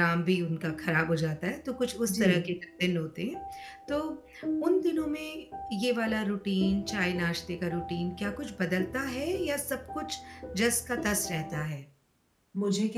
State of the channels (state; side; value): identical; both; correlation 1.00